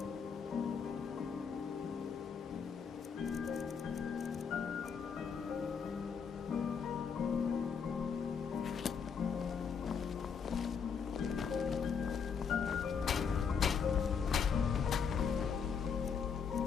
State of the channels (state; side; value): quieter; right; 6.4 dB